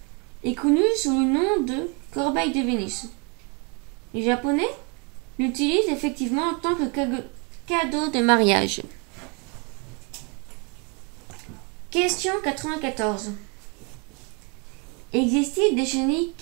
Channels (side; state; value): left; quieter; 33.0 dB